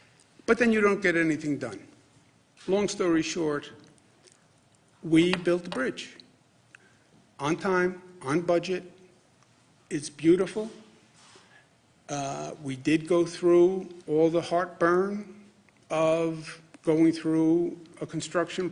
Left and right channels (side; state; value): both; identical; correlation 1.00